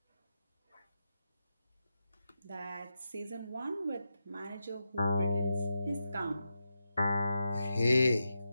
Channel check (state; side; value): inverted; both; correlation -0.88